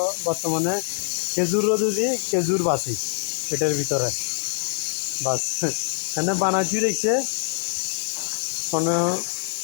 বর্তমানে খেজুর যদি খেজুর বাসি এটার ভিতরে বাস এনে বানাচ্ছি দেখছে কোনো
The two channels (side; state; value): right; silent; 63 dB below the other